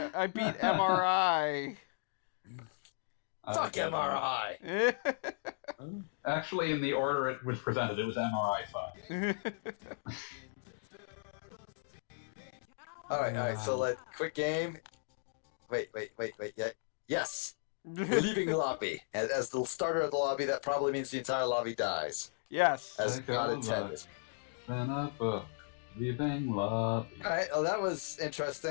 beat MRI. Fuck MRI. Actually, in the order it was presented, it was MRI fuck. All right. So quick game. Wait. Yeah. Yes. We're leaving the lobby. And as the starter of the lobby, that probably means the entire lobby dies. Yes. As God intended. Then a book, leaving love. Alright, well that was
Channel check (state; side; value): silent; right; digital silence